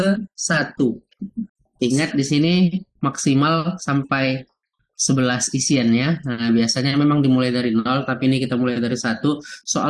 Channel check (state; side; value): identical; both; correlation 1.00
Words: Ingat di sini maksimal sampai 11 isian ya. Nah, biasanya memang dimulai dari 0, tapi ini kita mulai dari 1.